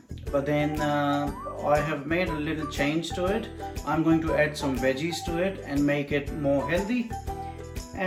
but then I have made a little change to it. I'm going to add some veggies to it and make it more healthy,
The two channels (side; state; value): both; identical; correlation 1.00